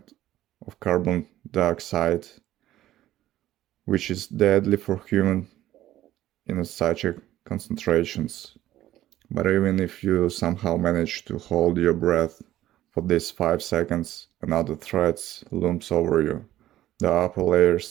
of carbon dioxide, which is deadly for humans in such concentrations. But even if you somehow manage to hold your breath for these 5 seconds, another threat looms over you. The upper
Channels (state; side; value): quieter; left; 13.9 dB